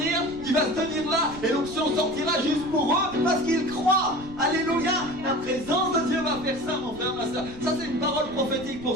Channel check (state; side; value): noise; right; rumble, 17 dB below the sound